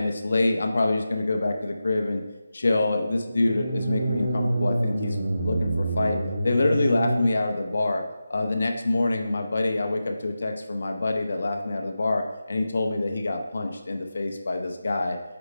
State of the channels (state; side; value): inverted; both; correlation -0.92